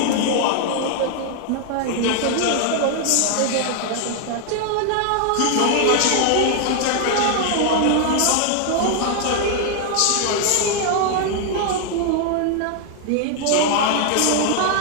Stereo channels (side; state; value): both; different; correlation 0.00